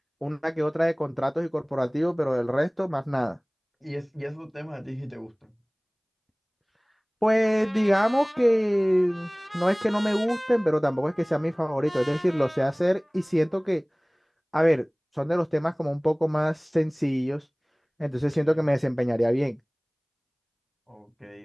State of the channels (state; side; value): identical; both; correlation 1.00